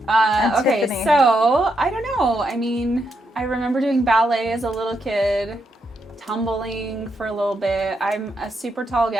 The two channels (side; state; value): both; normal; correlation 0.80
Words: Okay, Tiffany. so I don't know. I mean, I remember doing ballet as a little kid, tumbling for a little bit. I'm a super tall